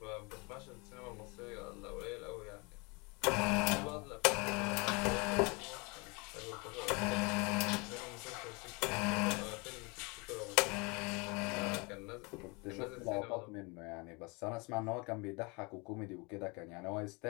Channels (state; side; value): quieter; right; 29.0 dB